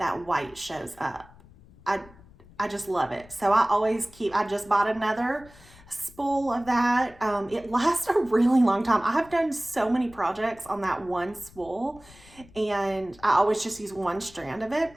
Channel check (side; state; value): left; noise; rumble, 24 dB below the sound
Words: white shows up. I just love it. So I just bought another spool of that. It lasts a really long time. I have done so many projects on that one spool, and I always just use one strand of it.